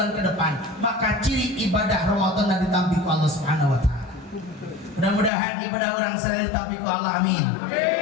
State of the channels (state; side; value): drops out; right; at 5.3 s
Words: ke depan, maka ciri ibadah Ramadan dan ditampik Allah Subhanahu wa taala. Mudah-mudahan ibadah orang selalu ditampik Allah, amin.